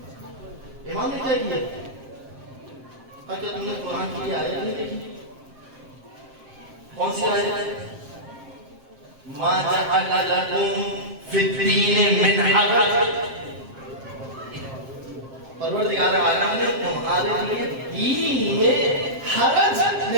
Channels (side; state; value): left; late; 7.6 ms